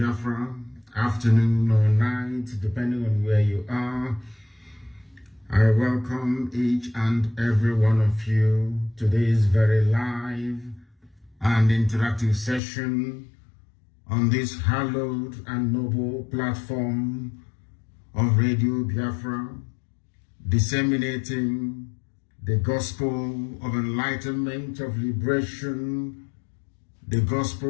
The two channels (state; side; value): drops out; right; at 12.6 s